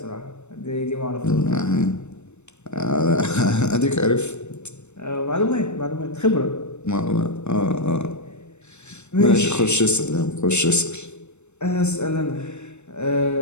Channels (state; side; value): late; right; 0.82 ms